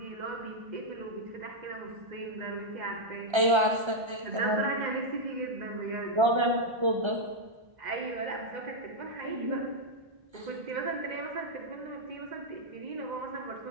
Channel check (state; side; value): late; left; 1.3 ms